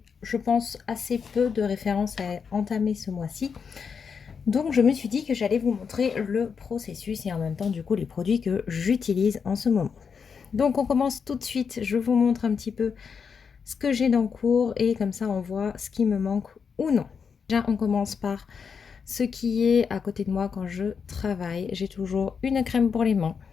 je pense assez peu de références à entamer ce mois-ci. Donc je me suis dit que j'allais vous montrer le processus et en même temps du coup les produits que j'utilise en ce moment. Donc on commence tout de suite, je vous montre un petit peu ce que j'ai dans le cours et comme ça on voit ce qui me manque ou non. Déjà on commence par ce qui est à côté de moi quand je travaille. J'ai toujours une crème pour les mains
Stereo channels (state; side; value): quieter; right; 6.2 dB